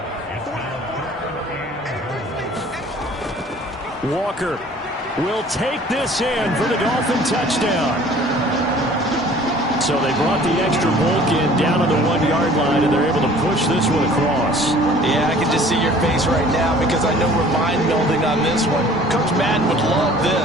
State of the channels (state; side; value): normal; both; correlation 0.50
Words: Walker will take this in for the Dolphin touchdown. So they brought the extra bulk in down on the 1-yard line, and they're able to push this one across. Yeah, I can just see your face right now because I know we're mind-melding on this one. Coach Madden would love